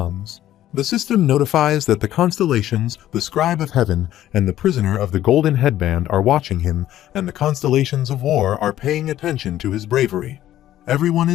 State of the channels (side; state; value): right; quieter; 13.0 dB